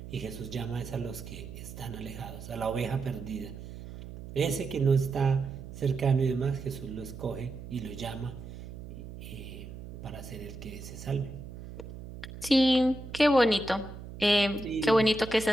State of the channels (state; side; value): noise; right; hum, 12 dB below the sound